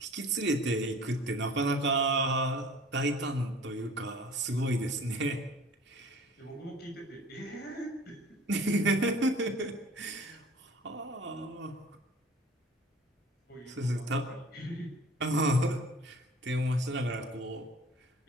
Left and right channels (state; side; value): normal; both; correlation 0.47